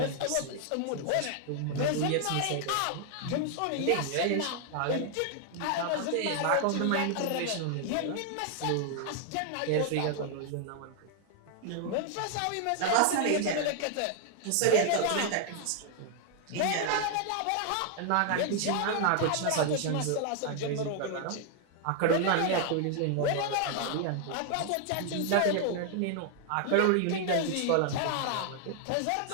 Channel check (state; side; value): different; both; correlation 0.00